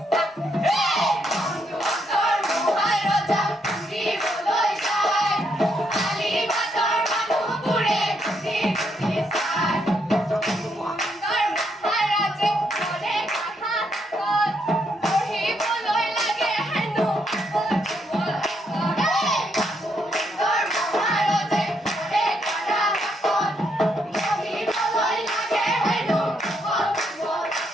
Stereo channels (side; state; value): both; normal; correlation 0.76